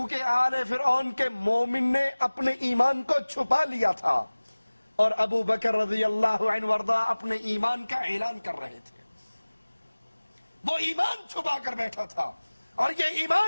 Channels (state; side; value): inverted; both; correlation -1.00